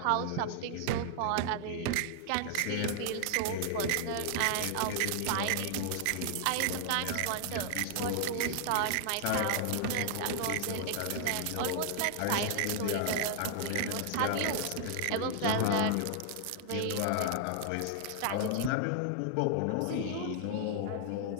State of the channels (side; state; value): both; different; correlation 0.00